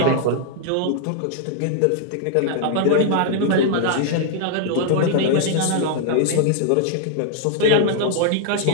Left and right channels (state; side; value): different; both; correlation -0.01